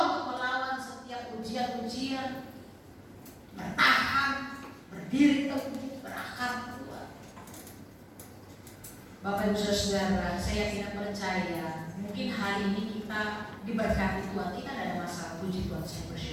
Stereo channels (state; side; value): identical; both; correlation 1.00